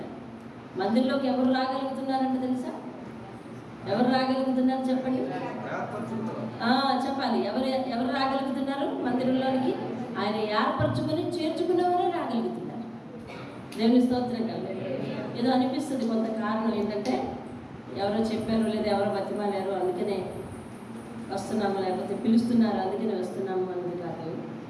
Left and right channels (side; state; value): both; identical; correlation 1.00